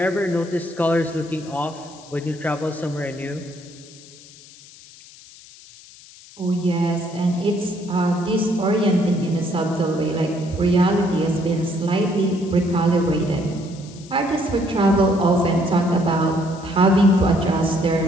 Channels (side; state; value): left; noise; hiss, 21 dB below the sound